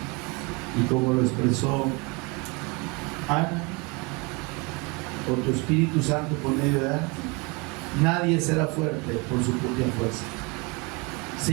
y como lo expresó Ana, o tu Espíritu Santo por medio de Ana, nadie será fuerte por su propia fuerza.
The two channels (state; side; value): quieter; left; 28.8 dB